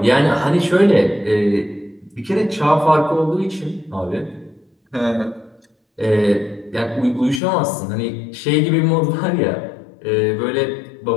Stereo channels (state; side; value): drops out; right; at 7.4 s